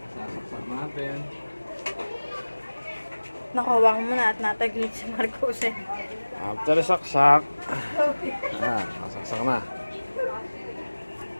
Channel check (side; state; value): both; inverted; correlation -1.00